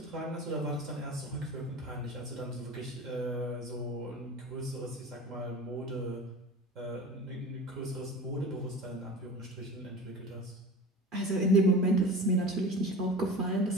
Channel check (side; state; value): both; normal; correlation 0.35